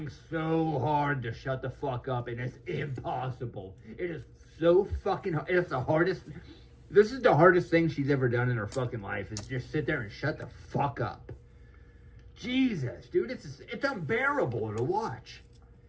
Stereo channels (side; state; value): both; identical; correlation 1.00